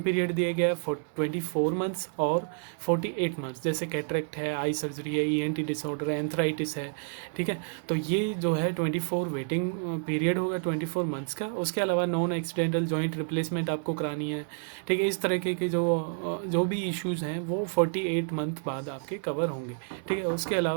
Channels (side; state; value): left; silent; 58 dB below the other